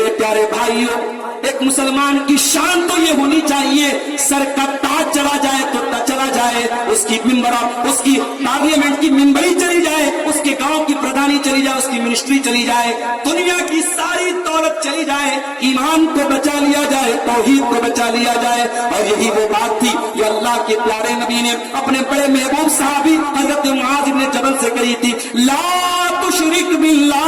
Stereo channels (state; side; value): identical; both; correlation 1.00